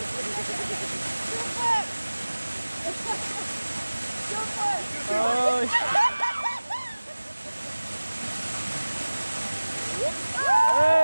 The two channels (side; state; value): both; inverted; correlation -1.00